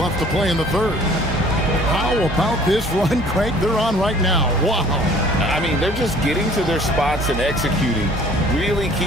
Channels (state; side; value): normal; both; correlation 0.53